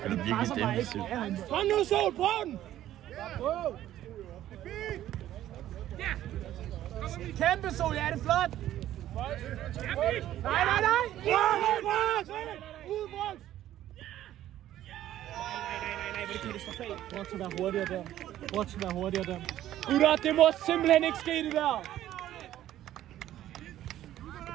virkelig defensivt. Kom nu, Sol, prøv den! Kæmpe Sol, ja, det er flot! Nej! Brok skal være hurtigere der. Brok skal være hurtigere der. Gutter, det må simpelthen ikke ske, det der.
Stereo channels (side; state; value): left; quieter; 12.8 dB